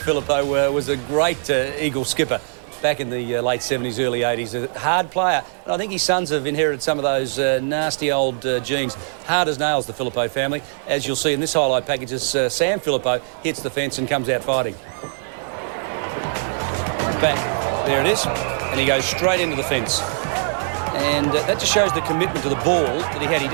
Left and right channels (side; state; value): left; silent; digital silence